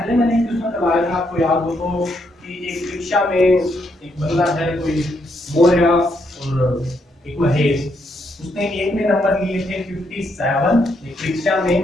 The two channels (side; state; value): both; normal; correlation 0.76